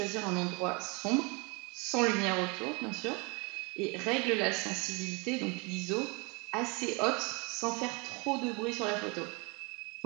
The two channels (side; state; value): left; quieter; 29.8 dB